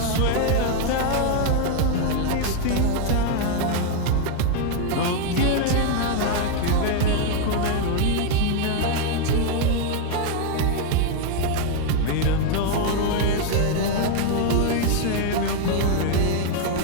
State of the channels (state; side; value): different; both; correlation 0.00